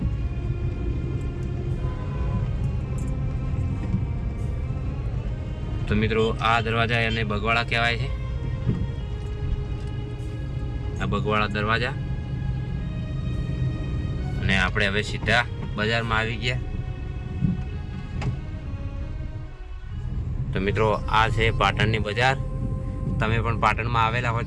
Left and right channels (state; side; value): identical; both; correlation 1.00